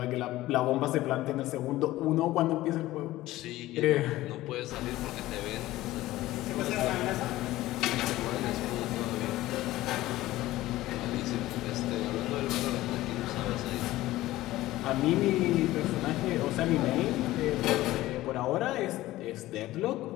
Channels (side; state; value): right; quieter; 16.6 dB